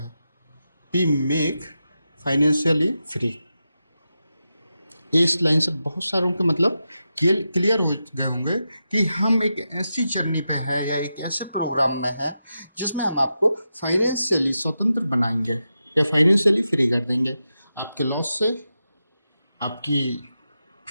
वी मेक फाइनेंशियली फ्री। इस लाइन से बहुत सारों के मतलब क्लियर हो गए होंगे कि हम एक ऐसी जर्नी पे है या एक ऐसे प्रोग्राम में है जिसमें हम आपको फाइनेंशियली स्वतंत्र बनाएंगे या फाइनेंशियली फ्री कर देंगे, आपके लॉस से, आपकी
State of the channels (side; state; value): both; inverted; correlation -0.89